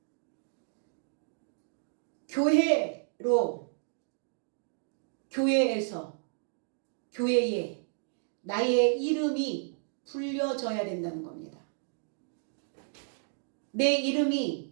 교회로, 교회에서, 교회에 나의 이름이 불려져야 된다는 겁니다. 내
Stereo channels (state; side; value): silent; left; digital silence